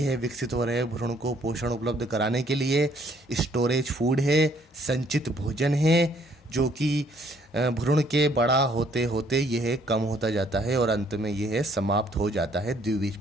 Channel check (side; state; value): both; normal; correlation 0.64